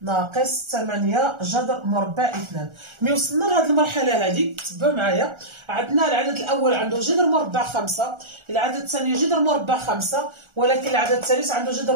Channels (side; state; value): left; late; 1.4 ms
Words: ناقص 8 جذر مربع 2. ملي وصلنا لهاد المرحلة هادي تبعوا معايا، عندنا العدد الأول عنده جذر مربع 5، العدد الثاني جذر مربع 5، ولكن العدد الثالث عنده